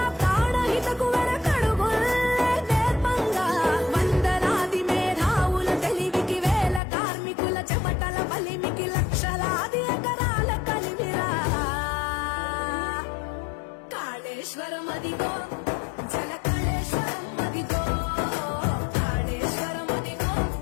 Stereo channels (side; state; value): right; drops out; at 6.8 s